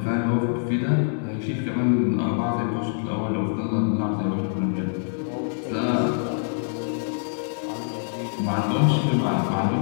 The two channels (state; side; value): silent; right; digital silence